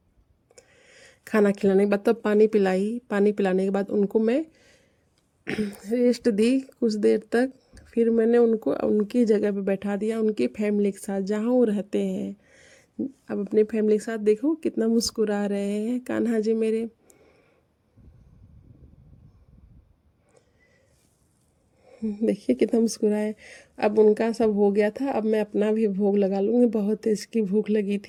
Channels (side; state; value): both; identical; correlation 1.00